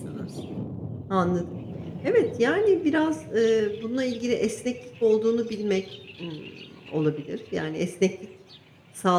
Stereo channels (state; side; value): identical; both; correlation 1.00